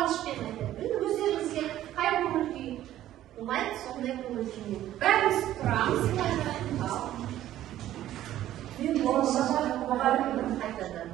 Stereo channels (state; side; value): quieter; left; 13.1 dB